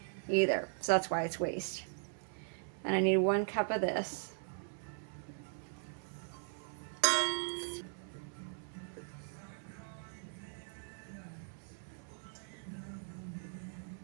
either. So that's why it's waste. And I need 1 cup of this.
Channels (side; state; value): left; silent; 52 dB below the other